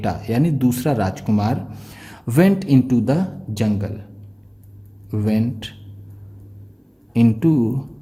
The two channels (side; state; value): both; identical; correlation 1.00